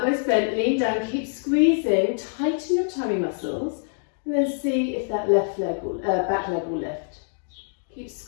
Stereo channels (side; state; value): right; silent; 57 dB below the other